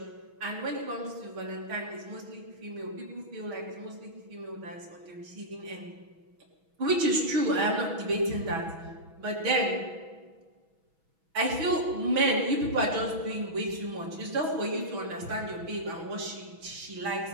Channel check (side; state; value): left; late; 6.1 ms